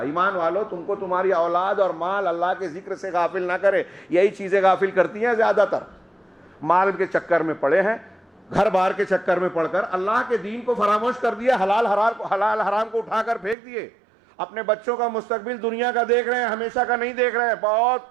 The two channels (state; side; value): drops out; left; at 13.6 s